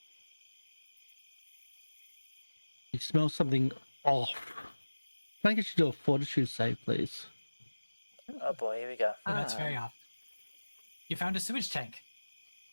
You smell something off. Can I get you to do a fortitude save, please? Oh boy, here we go. Oh, that's very off. You found a sewage tank.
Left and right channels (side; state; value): both; inverted; correlation -1.00